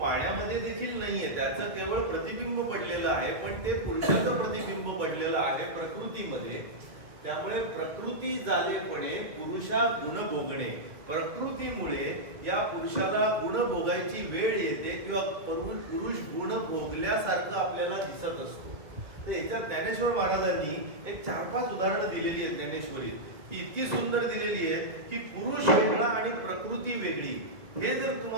देखील नाहीये, त्याचं केवळ प्रतिबिंब पडलेलं आहे, पण ते पुरुषाचं प्रतिबिंब पडलेलं आहे प्रकृतीमध्ये. त्यामुळे प्रकृती झालेपणे पुरुषा गुण भोगणे, प्रकृतीमुळे या पुरुषाला गुण भोगायची वेळ येते किंवा पुरुष गुण भोगल्यासारखं आपल्याला दिसत असतो. तर याच्यात ज्ञानेश्वर महाराजांनी एक 4-5 उदाहरणं दिलेली आहेत ज्ञानेश्वरीत. ती इतकी सुंदर दिलेली आहे की पुरुष वेगळा आणि प्रकृती वेगळी. हे जर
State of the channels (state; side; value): late; left; 1.6 ms